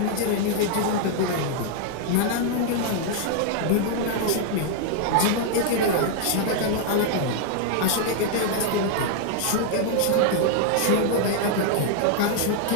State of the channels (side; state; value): both; different; correlation 0.00